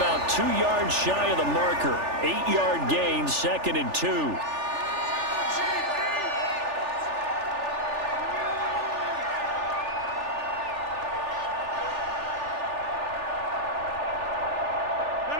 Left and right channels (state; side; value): late; left; 3.4 ms